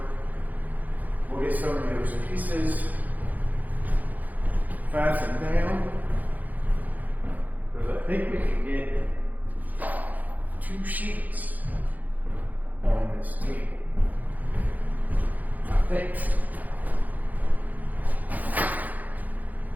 We'll get some of those pieces fastened down. Because I think we can get 2 sheets on this table. I think.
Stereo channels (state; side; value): late; left; 0.081 ms